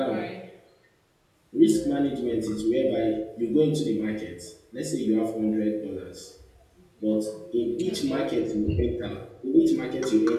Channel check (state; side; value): identical; both; correlation 1.00